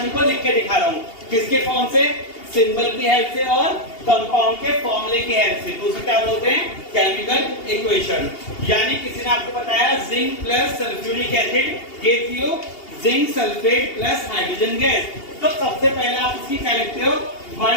को लिख के दिखा रहा हूं, किसके फॉर्म से? सिंबल की हेल्प से और कंपाउंड के फॉर्मूले की हेल्प से, तो उसे क्या बोलते हैं? Chemical equation. यानी किसी ने आपको बताया zinc plus sulphuric acid gives you zinc sulphate plus hydrogen gas, तो सबसे पहले आप इसकी क्या लिखते हो?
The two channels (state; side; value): late; right; 2.8 ms